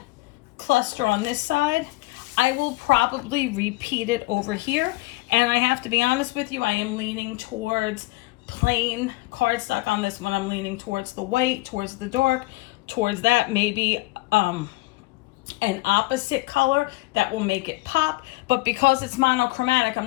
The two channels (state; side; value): quieter; right; 21.3 dB